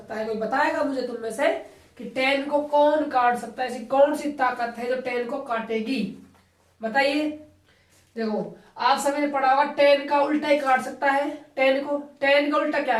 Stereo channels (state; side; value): identical; both; correlation 1.00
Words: है, कोई बताएगा मुझे तुम में से कि tan को कौन काट सकता है, ऐसी कौन सी ताकत है जो tan को काटेगी, बताइए। देखो आप सभी ने पढ़ा होगा tan का उल्टा ही काट सकता है। tan का उल्टा क्या